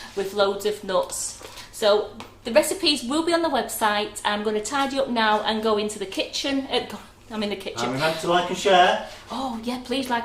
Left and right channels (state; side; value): identical; both; correlation 1.00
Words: with loads of nuts. So the recipes will be on the website. I'm going to tidy up now and go into the kitchen. I'm in the kitchen. And remember to like and share. Oh yeah, please